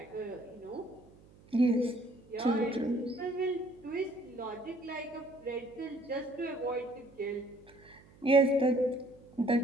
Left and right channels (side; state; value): right; noise; hum, 25 dB below the sound